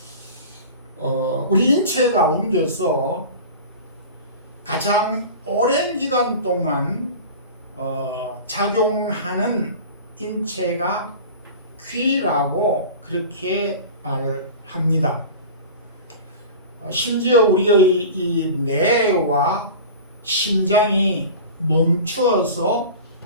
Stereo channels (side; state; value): both; inverted; correlation -0.35